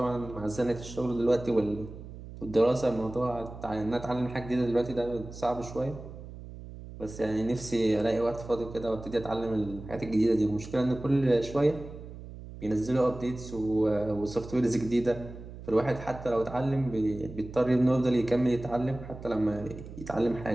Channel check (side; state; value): right; noise; hum, 13 dB below the sound